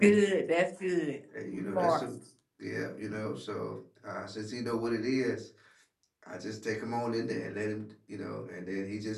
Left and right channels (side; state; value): both; identical; correlation 1.00